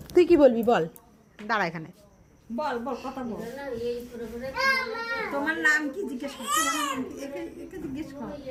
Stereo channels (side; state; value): both; identical; correlation 1.00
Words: তুই কি বলবি বল, দাঁড়া এখানে বল বল কথা বল। তোমার নাম কি জিজ্ঞেস কর, তোমার নাম কি? একে জিজ্ঞেস কর।